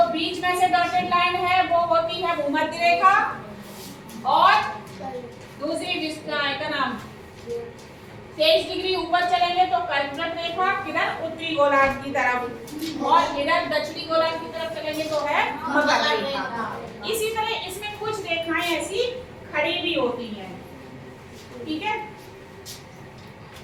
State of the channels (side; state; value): both; identical; correlation 1.00